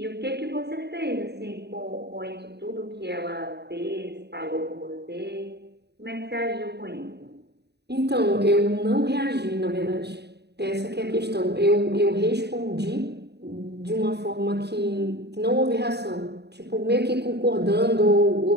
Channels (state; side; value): late; left; 0.48 ms